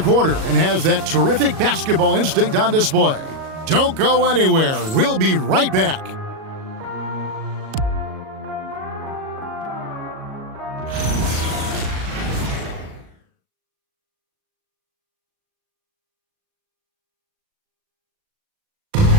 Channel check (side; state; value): left; late; 37 ms